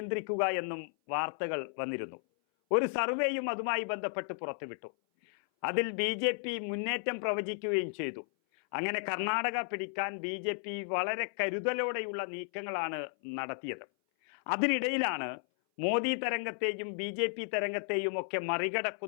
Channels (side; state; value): right; silent; 55 dB below the other